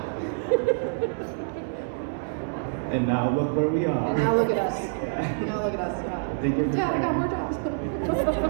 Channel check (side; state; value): left; silent; digital silence